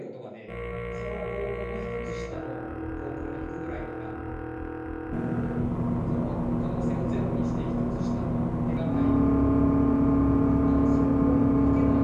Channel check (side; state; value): both; identical; correlation 1.00